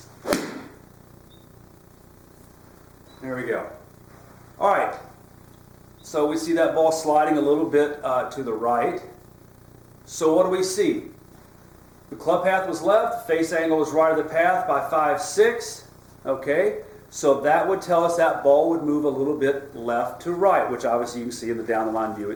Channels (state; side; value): identical; both; correlation 1.00